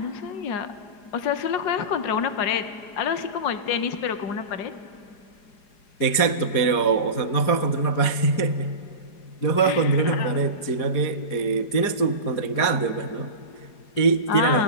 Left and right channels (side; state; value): right; late; 4.9 ms